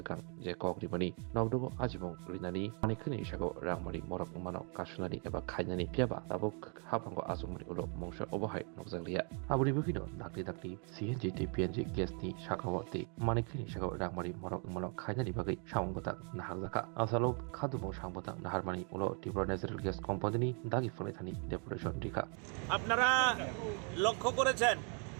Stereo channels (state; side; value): quieter; left; 39.0 dB